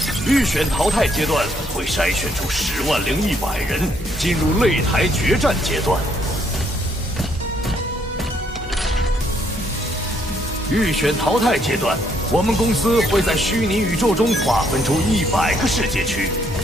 预选淘汰阶段会筛选出100100人，进入擂台决战阶段。预选淘汰阶段，我们公司会在虚拟宇宙中划分出100个世界区，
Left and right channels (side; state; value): both; normal; correlation 0.70